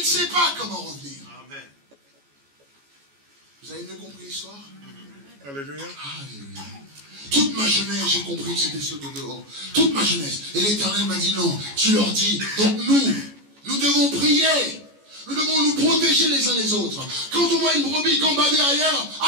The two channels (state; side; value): late; left; 14 ms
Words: sait pas comment revenir. Amen. Vous avez mieux compris l'histoire? Alléluia. Alléluia. Toute ma jeunesse, j'ai compris que c'était ceux de dehors. Toute ma jeunesse. Et l'Éternel m'a dit non, tu leur dis. Donc nous devons prier. Nous devons nous protéger les uns les autres. Quand on voit une brebis gambader ailleurs,